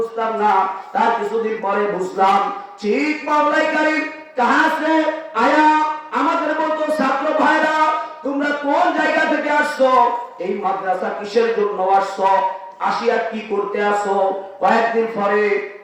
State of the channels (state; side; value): identical; both; correlation 1.00